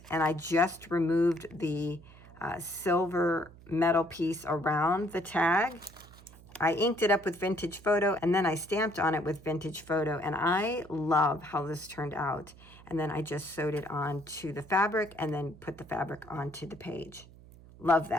and I just removed the silver metal piece around the tag. I inked it up with Vintage Photo, and then I stamped on it with Vintage Photo, and I love how this turned out. And then I just sewed it onto the fabric and then put the fabric onto the page. Love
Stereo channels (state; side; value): noise; right; hum, 21 dB below the sound